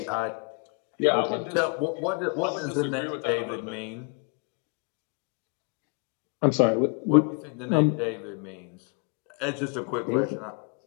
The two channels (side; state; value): right; quieter; 36.8 dB